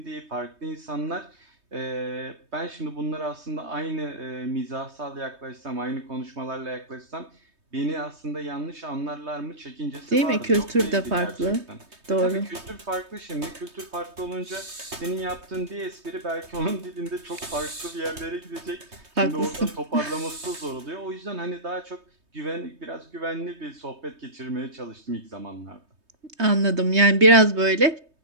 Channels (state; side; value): late; left; 3.2 ms